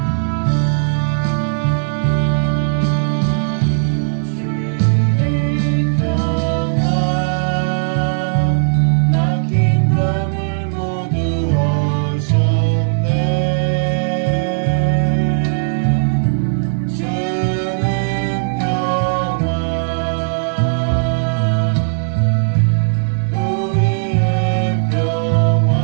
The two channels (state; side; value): silent; left; digital silence